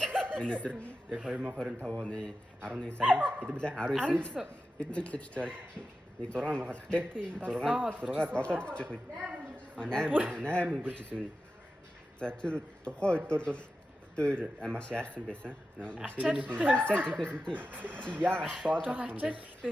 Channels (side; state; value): both; normal; correlation 0.92